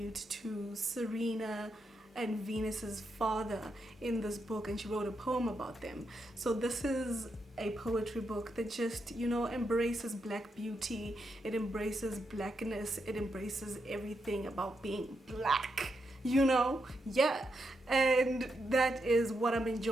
to Serena and Venus's father in this book, and she wrote a poem about them. So this is a poetry book that just, you know, embraces black beauty. It embraces blackness. It embraces everything about being black, you know? Yeah. And that is what I'm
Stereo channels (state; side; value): normal; both; correlation 0.83